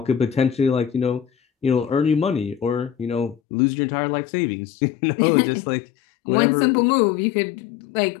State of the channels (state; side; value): drops out; right; at 3.4 s